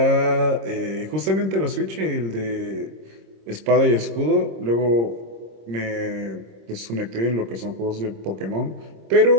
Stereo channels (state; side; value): late; left; 26 ms